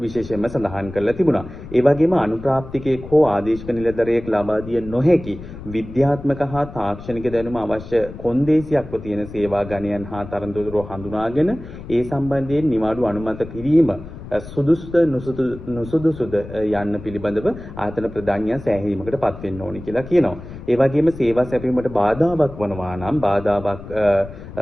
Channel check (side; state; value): left; noise; rumble, 13 dB below the sound